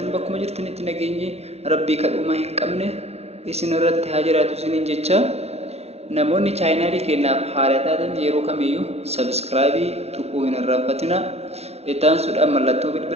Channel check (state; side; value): late; left; 0.30 ms